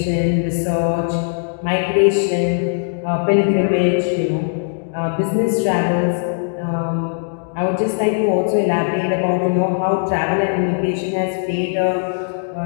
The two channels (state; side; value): silent; right; digital silence